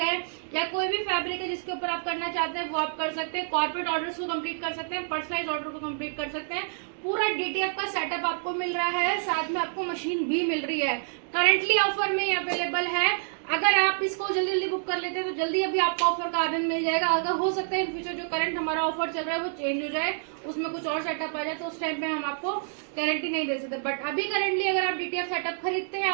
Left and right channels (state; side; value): silent; left; digital silence